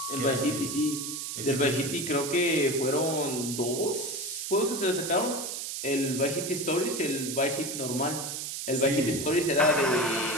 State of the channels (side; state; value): right; noise; hiss, 5 dB below the sound